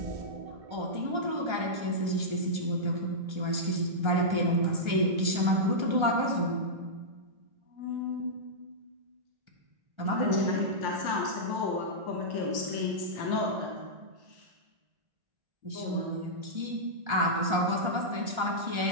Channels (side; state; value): left; late; 1.3 ms